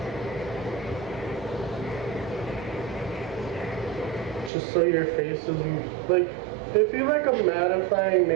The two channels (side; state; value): left; drops out; at 4.5 s